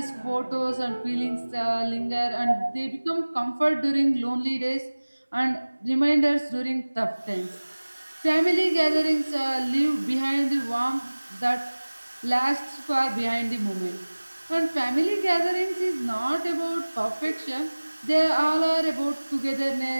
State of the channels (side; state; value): both; inverted; correlation -1.00